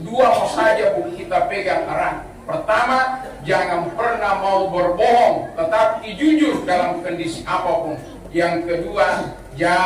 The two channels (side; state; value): both; identical; correlation 1.00